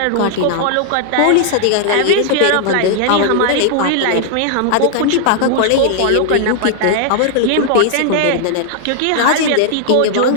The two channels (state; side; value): different; both; correlation 0.00